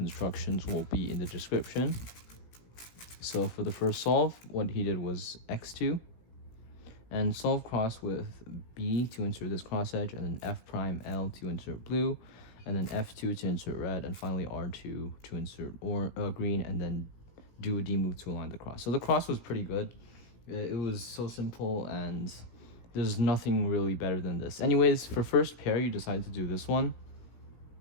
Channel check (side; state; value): right; late; 17 ms